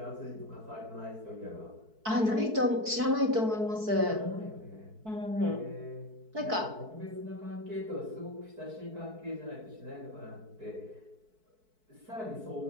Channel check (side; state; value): left; late; 4.6 ms